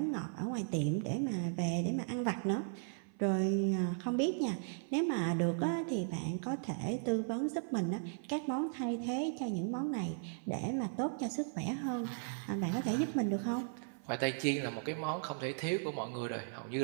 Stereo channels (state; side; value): silent; left; 53 dB below the other